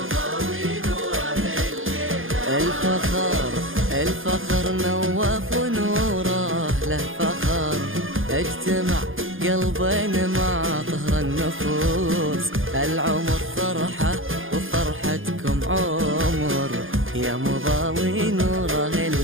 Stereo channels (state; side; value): late; left; 0.59 ms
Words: الفخر نوف ونوره له فخر، اجتمع قلبين مع طهر النفوس. العمر فرحة وفرحتكم عمر، يا مضاوي نوره